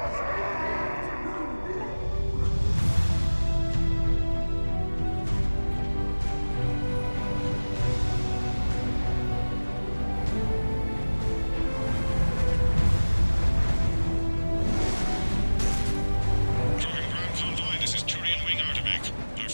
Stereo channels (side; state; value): both; inverted; correlation -1.00